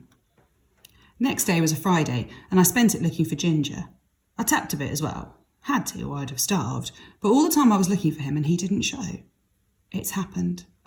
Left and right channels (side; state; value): both; identical; correlation 1.00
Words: Next day was a Friday, and I spent it looking for Ginger. I tapped a bit as well. Had to, or I'd have starved. But all the time I was looking for him and he didn't show. It's happened,